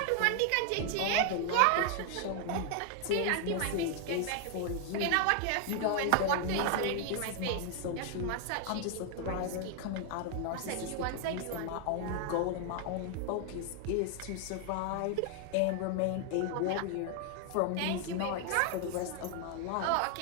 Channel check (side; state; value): both; different; correlation 0.00